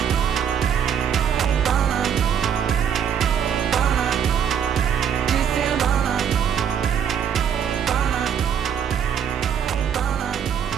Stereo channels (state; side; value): quieter; left; 8.3 dB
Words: pana, pana, de semana. Pana, pana,